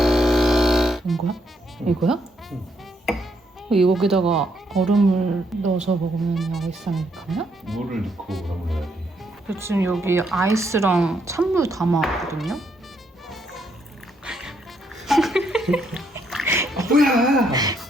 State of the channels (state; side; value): normal; both; correlation 0.74